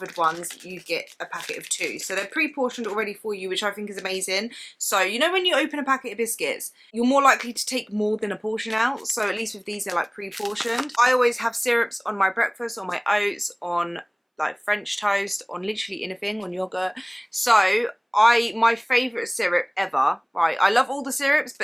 ones you get a packet of 2. So they're pre-portioned already for you, which I think is amazing. So you know when you open a packet of biscuits, you're more likely to take more than a portion out. So at least with these they're like pre-portioned. I always have syrups on my breakfast, on my oats, on like French toast, on literally anything, on yogurt. So my favourite syrup ever, right? I love all the syrups,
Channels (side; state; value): both; identical; correlation 1.00